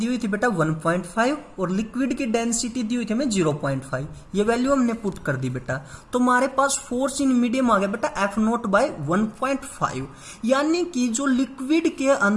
हुई थी बेटा 1.5 और लिक्विड की डेंसिटी दी हुई थी हमें 0.5। ये वैल्यू हमने पुट कर दी बेटा। तो हमारे पास फोर्स इन मीडियम आ गया बेटा F0/1.5, यानी कि जो लिक्विड के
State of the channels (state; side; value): identical; both; correlation 1.00